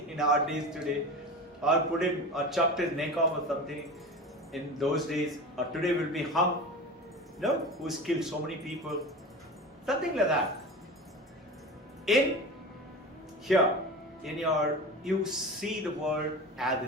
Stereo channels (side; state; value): both; normal; correlation 0.31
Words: our days today. Or put him, or chopped his neck off or something in those days. Or today will be hung. No? Who's killed so many people. Something like that. In here, you see the world as